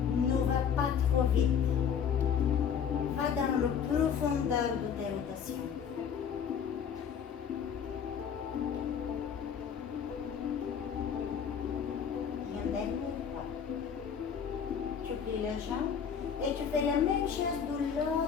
Ne va pas trop vite. Va dans la profondeur de tes rotations. Et un dernier pas. Tu plies les jambes et tu fais la même chose de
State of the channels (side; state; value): right; quieter; 7.5 dB